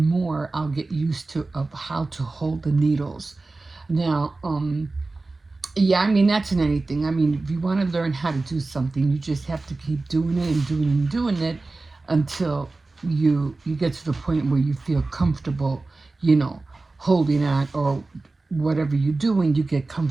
more I'll get used to of how to hold the needles. Now, yeah, I mean that's in anything. I mean, if you want to learn how to do something, you just have to keep doing it and doing it until you get to the point where you feel comfortable, you know, holding on, or whatever you're doing, you get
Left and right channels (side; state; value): left; quieter; 3.4 dB